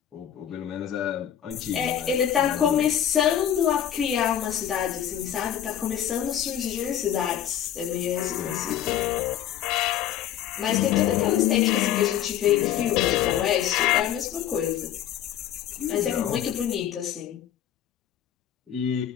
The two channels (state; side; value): quieter; right; 10.5 dB